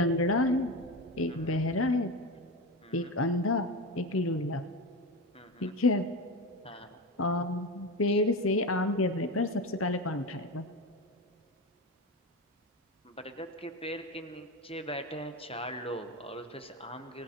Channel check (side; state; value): both; normal; correlation 0.21